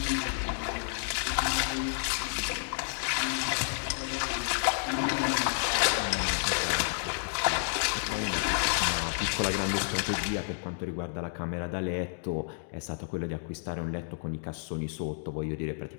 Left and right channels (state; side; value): silent; right; digital silence